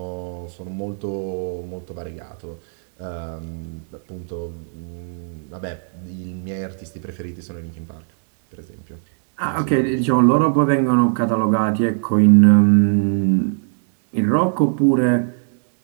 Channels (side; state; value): left; silent; digital silence